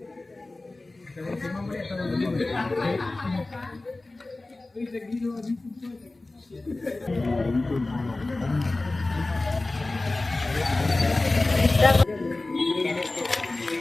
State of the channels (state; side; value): quieter; right; 3.1 dB